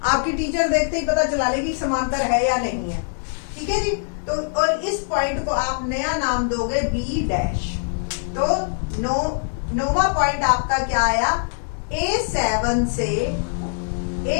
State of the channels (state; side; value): silent; right; 64 dB below the other